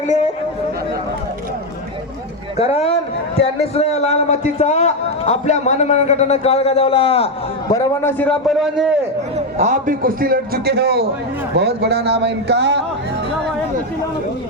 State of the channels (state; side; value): normal; both; correlation 0.07